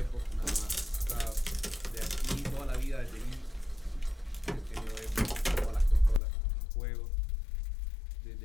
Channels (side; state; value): right; drops out; at 6.2 s